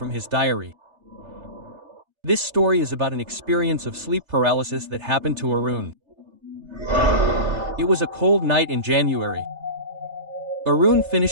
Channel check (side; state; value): left; late; 3.4 ms